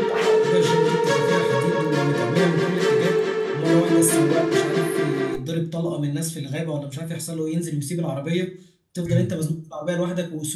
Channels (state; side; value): identical; both; correlation 1.00